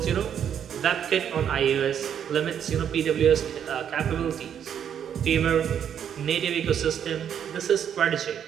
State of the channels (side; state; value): left; quieter; 8.8 dB